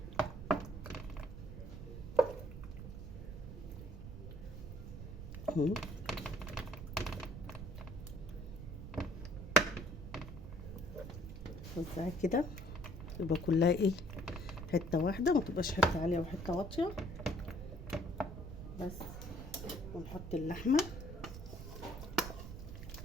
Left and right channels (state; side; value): noise; right; rumble, 9 dB below the sound